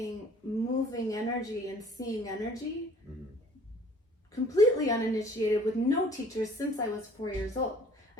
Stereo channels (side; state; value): both; normal; correlation 0.54